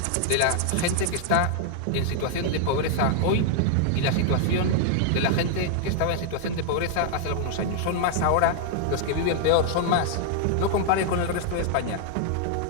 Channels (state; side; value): different; both; correlation 0.00